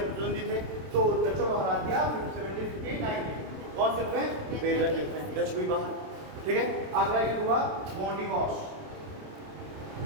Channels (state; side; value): late; left; 27 ms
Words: थे, तो डचों को हरा दिया 1759 में। कौन से में बेदरा युद्ध में, डच भी बाहर, ठीक है। अगला युद्ध हुआ वांडीवास,